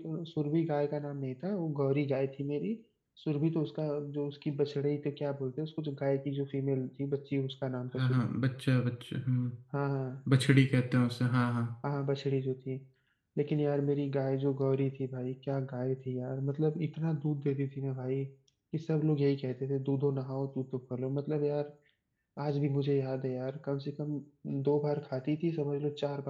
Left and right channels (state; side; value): identical; both; correlation 1.00